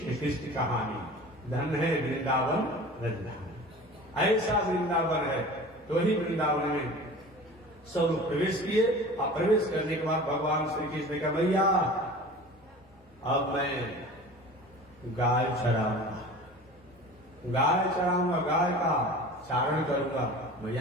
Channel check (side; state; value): both; normal; correlation 0.39